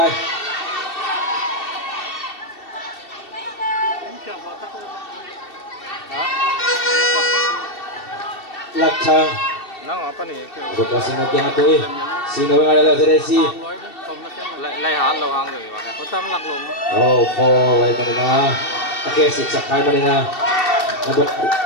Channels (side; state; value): right; late; 2.7 ms